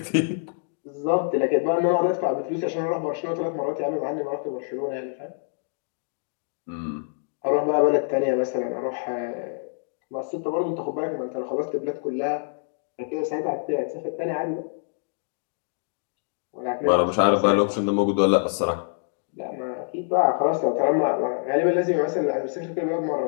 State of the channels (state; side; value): silent; right; digital silence